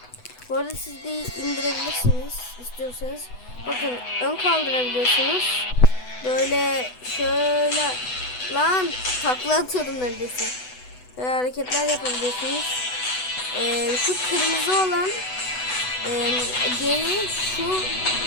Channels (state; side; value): late; right; 8.0 ms